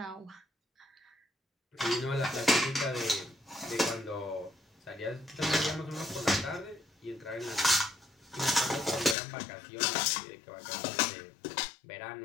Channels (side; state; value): right; drops out; at 9.2 s